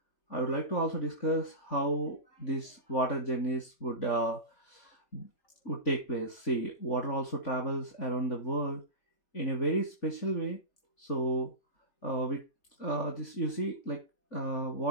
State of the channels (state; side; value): late; right; 3.5 ms